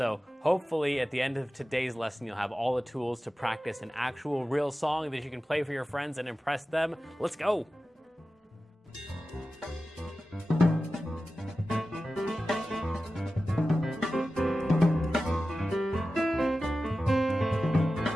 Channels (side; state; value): both; normal; correlation 0.94